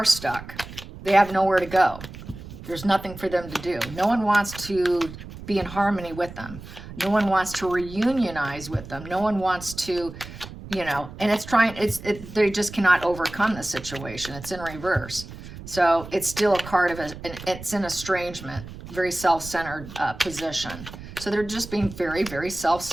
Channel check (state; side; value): noise; right; rumble, 14 dB below the sound